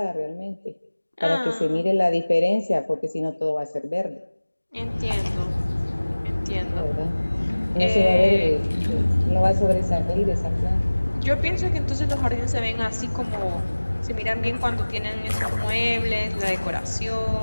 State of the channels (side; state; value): both; inverted; correlation -1.00